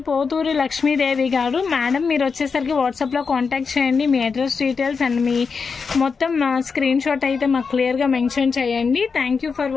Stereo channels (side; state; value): right; quieter; 5.3 dB